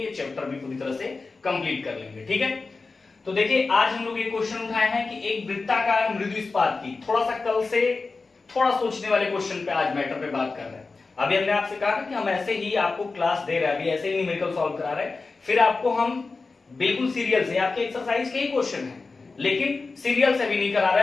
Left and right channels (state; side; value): quieter; right; 4.0 dB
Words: चैप्टर भी पूरी तरह से कंप्लीट कर लेंगे, ठीक है। तो देखिए आज हम लोग ये क्वेश्चन उठाए हैं कि एक वृत्ताकार मृदु इस्पात की, थोड़ा सा कल से थोड़ा सोचने वाले क्वेश्चन पे आज मैटर पे बात कर रहे हैं। अभी हमने आपसे कहा कि हम ऐसे ही आपको क्लास दे रहे हैं, अभी ऐसे ही न्यूमेरिकल सॉल्व करा रहे हैं, फिर आपको हम बिल्कुल सीरियल से आपके एक्सरसाइज के ही क्वेश्चन हैं, लेकिन सीरियल से भी नहीं करा